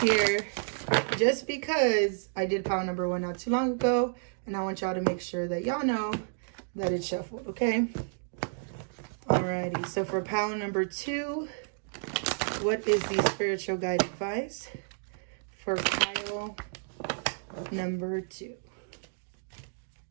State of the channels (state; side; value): silent; left; digital silence